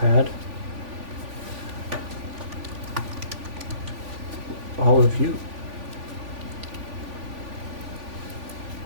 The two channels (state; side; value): late; left; 3.5 ms